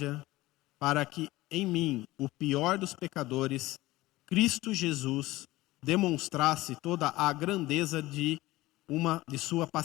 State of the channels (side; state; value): right; quieter; 18.3 dB